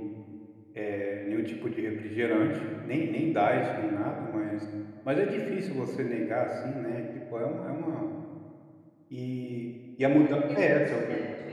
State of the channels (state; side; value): identical; both; correlation 1.00